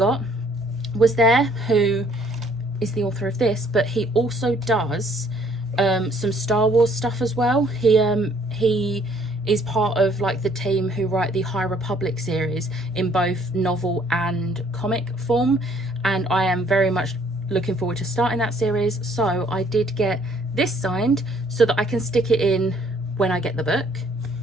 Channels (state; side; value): normal; both; correlation 0.62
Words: was there, who is the author of this, but he also does some Star Wars stuff as well. He is part of like the team who write the High Republic series in both novel and comic form, and I am very much looking forward to starting that series. So I did get this signed so that I can stick it in when I get the book.